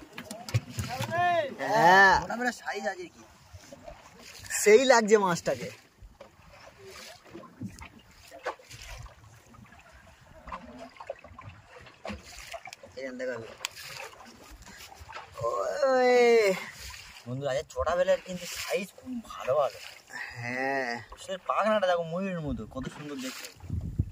হ্যাঁ ছোটবেলা সাইজ আছে কি, সেই লাগছে মাছটাকে। বন্ধুরা আজ ছোটবেলার কিন্তু সাইজ খুব ভালো ভালো। হ্যাঁ সে পাখনাটা দেখো ময়ূরের মতো, কত সুন্দর দেখতে।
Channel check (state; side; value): identical; both; correlation 1.00